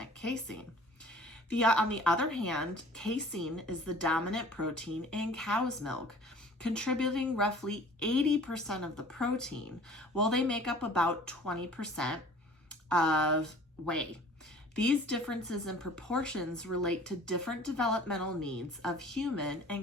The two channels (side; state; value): both; normal; correlation 0.48